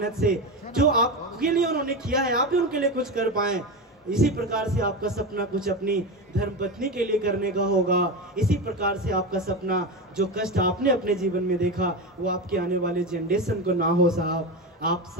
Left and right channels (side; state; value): both; normal; correlation 0.19